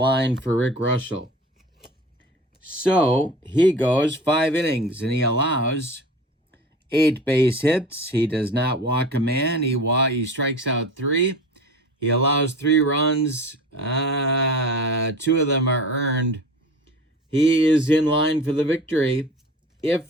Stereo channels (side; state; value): both; normal; correlation 0.37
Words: for Rick Reuschel. So he goes 5 innings, and he allows 8 base hits. He does not walk a man. He strikes out 3. He allows 3 runs. 2 of them are earned. He is in line for the victory